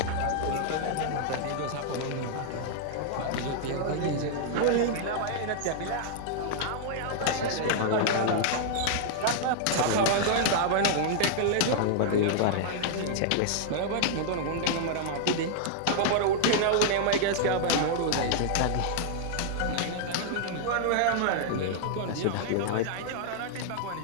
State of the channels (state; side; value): different; both; correlation -0.01